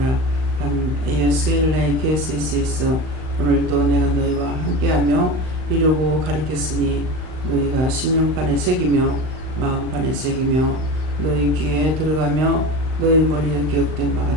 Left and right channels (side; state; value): left; late; 39 ms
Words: 예수의 KSS에서 오늘도 내가 너희와 함께하며 이루고 가르쳤으니 너희가 심령판에 새기며 마음판에 새기며 너희 귀에 들어가며 너희 머리에 기억된 바가